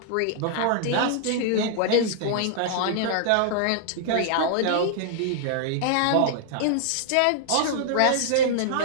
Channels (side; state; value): both; different; correlation -0.01